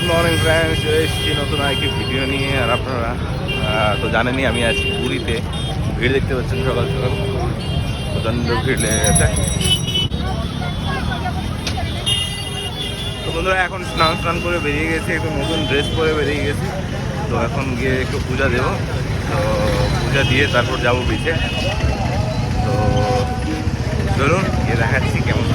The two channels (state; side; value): identical; both; correlation 1.00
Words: Morning friends, চলে এসেছি নতুন আরেকটি ভিডিও নিয়ে। আর আপনারা তো জানেনই আমি আছি পুরীতে। ভিড় দেখতে পাচ্ছেন, সকাল সকাল প্রচণ্ড ভিড় লেগে গেছে। তো বন্ধুরা এখন স্নান করে বেরিয়ে গেছে, একটু নতুন ড্রেস পরে বেরিয়ে গেছি। তো এখন গিয়ে একটু পূজা দেবো। তো পূজা দিয়ে তারপর যাবো বিচে। তো চলুন গিয়ে দেখাচ্ছি কেমন